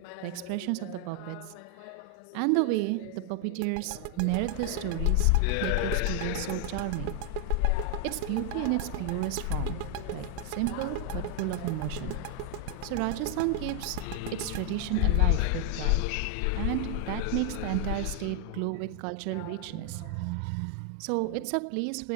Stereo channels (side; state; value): both; different; correlation 0.00